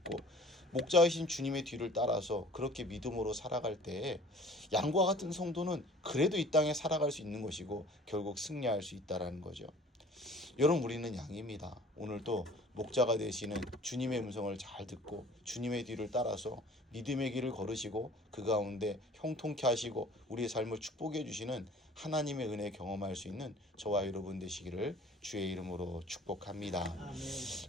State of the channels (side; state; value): both; normal; correlation 0.49